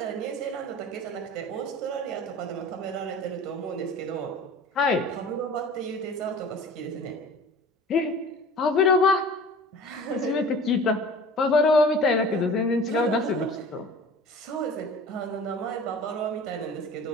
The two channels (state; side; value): normal; both; correlation 0.42